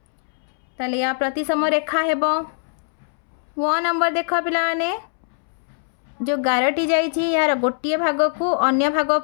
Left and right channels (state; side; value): silent; right; 64 dB below the other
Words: ताले या प्रतिसम रेखा हेबो। व नंबर देख पिलाने जो गारटी जाइछि यार गोटे भाग को अन्य भाग